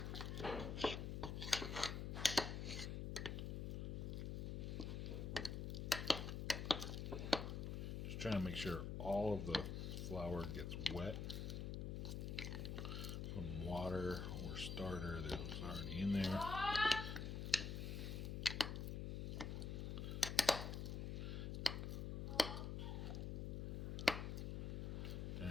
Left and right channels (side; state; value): left; noise; hum, 2 dB below the sound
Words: Trying to make sure all of the flour gets wet from water or starter that was already in there.